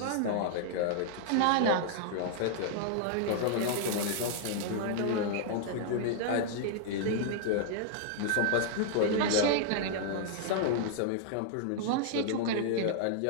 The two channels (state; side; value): different; both; correlation -0.01